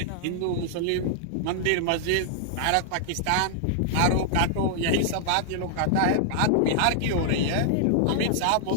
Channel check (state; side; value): different; both; correlation -0.01